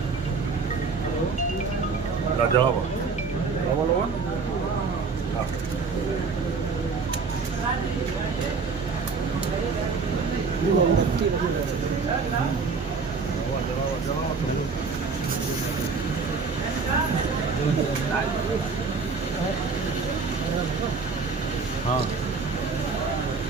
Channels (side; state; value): left; quieter; 4.8 dB